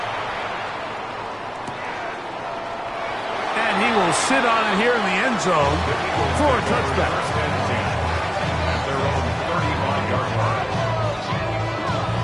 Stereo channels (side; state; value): both; identical; correlation 1.00